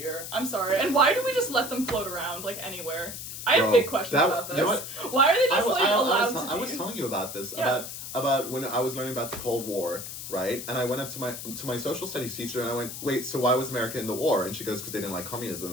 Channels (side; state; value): left; noise; hiss, 8 dB below the sound